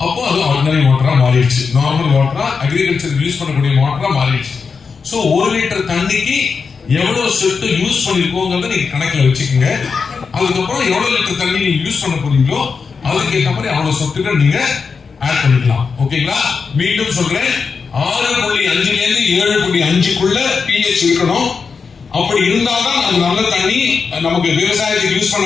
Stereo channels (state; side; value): quieter; right; 5.3 dB